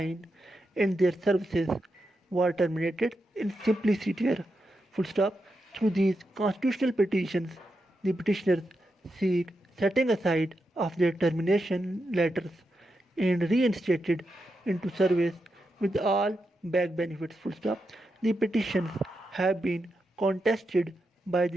and their services were terminated in simpliciter. Full stop. Through these constitutional petitions, the petitioners seek setting aside of their termination letters and reinstated into service with all back benefits. Full stop. The petitions have been contested by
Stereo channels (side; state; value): both; normal; correlation 0.86